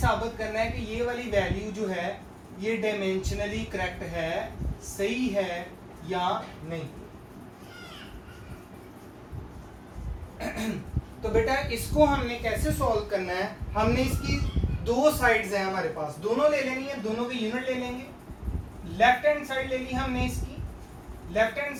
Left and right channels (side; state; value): both; identical; correlation 1.00